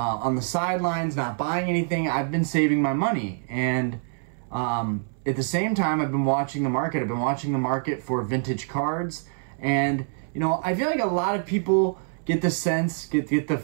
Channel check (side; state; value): left; silent; 61 dB below the other